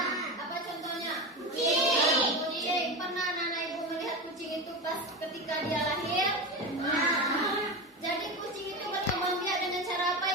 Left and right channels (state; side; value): normal; both; correlation 0.21